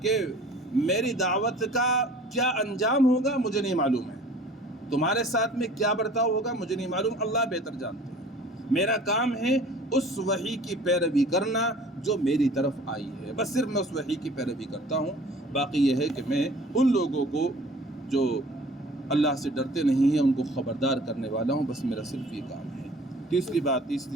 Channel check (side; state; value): both; normal; correlation 0.48